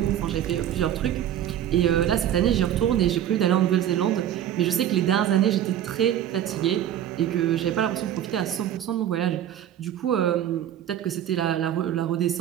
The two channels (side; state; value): left; quieter; 10.9 dB